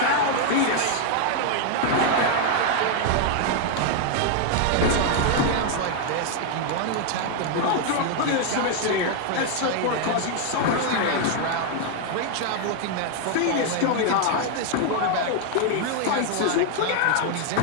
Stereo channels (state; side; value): different; both; correlation 0.00